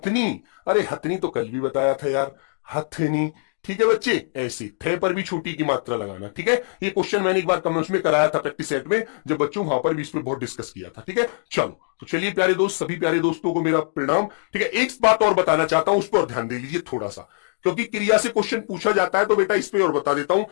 अरे हथनी तो कल भी बताया था यार, हथनी। ठीक है बच्चे, ऐसी थे पर भी छोटी की मात्रा लगाना। ठीक है, ये क्वेश्चन मैंने एक बार कमेंट्स में कराया था प्रैक्टिस सेट में, जब बच्चों वहां पर भी इस पर बहुत डिस्कस किया था। ठीक है, चलो। तो चलिए प्यारे दोस्त, सभी प्यारे दोस्तों को मेरा प्रणाम। ठीक है, एक बात और बताना चाहता हूं, उस पर ध्यान दे लीजिए थोड़ा सा, क्योंकि क्रिया से क्वेश्चन पूछा जाता है, तो बेटा इस पर और बता देता हूं।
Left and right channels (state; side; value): silent; right; digital silence